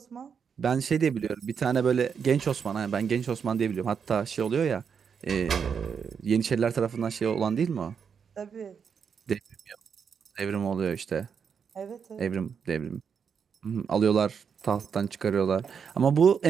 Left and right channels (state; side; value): quieter; left; 6.7 dB